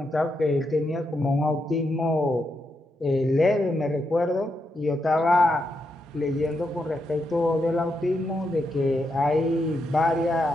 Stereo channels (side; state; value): both; normal; correlation 0.83